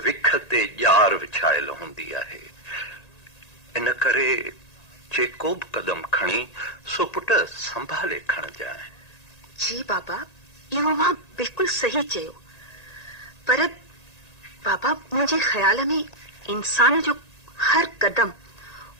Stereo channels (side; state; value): right; late; 1.9 ms